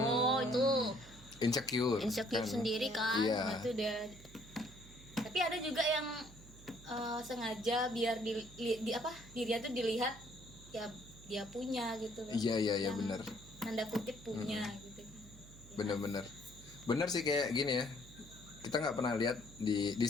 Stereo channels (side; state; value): right; noise; hum, 19 dB below the sound